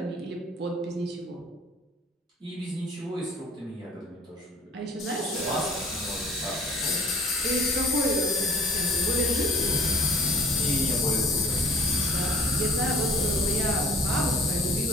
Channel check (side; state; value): both; normal; correlation 0.50